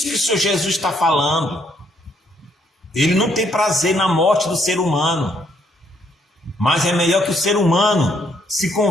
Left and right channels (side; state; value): both; normal; correlation 0.70